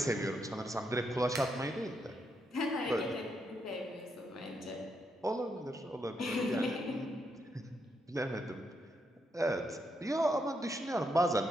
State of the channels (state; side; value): normal; both; correlation 0.79